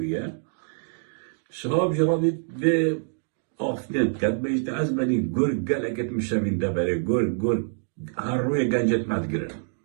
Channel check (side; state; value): left; silent; digital silence